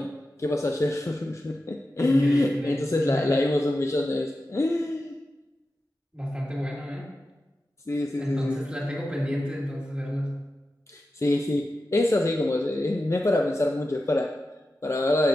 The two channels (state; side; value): normal; both; correlation 0.91